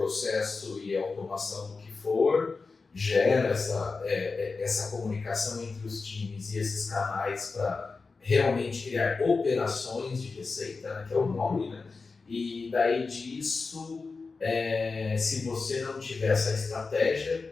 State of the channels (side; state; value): right; quieter; 4.3 dB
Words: e automação do que for, gera essa comunicação entre os times e esses canais para realmente criar operações de receita, né, que é o nome, né? E daí disso, se você não tiver essa